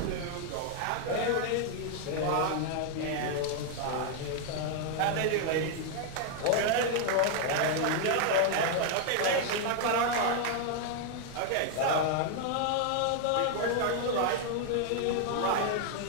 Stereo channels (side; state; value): both; different; correlation 0.00